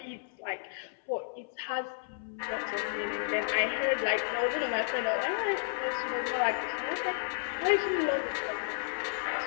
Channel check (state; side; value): silent; right; 56 dB below the other